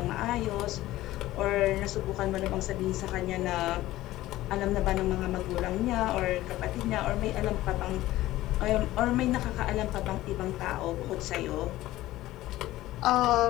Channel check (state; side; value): quieter; right; 16.0 dB